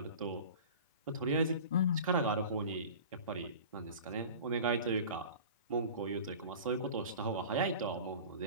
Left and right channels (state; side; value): inverted; both; correlation -0.38